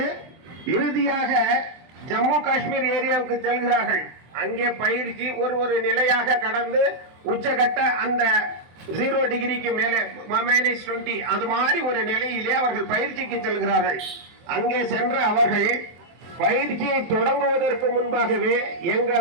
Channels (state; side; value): late; left; 24 ms